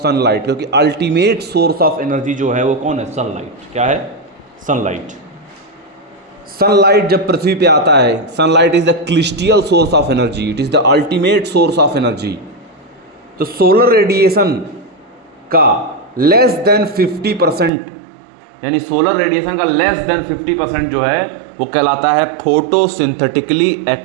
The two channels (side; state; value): left; drops out; at 17.7 s